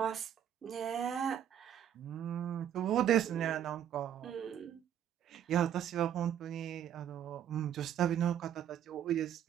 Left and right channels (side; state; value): left; quieter; 10.0 dB